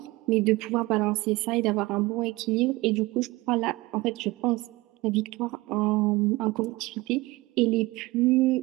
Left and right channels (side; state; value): left; quieter; 21.2 dB